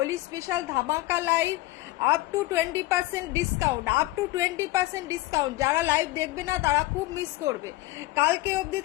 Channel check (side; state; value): right; quieter; 18.4 dB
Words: স্পেশাল ধামাকা live up to 20% discount up to 20% discount যারা লাইভ দেখবে না তারা খুব মিস করবে কালকে অবধি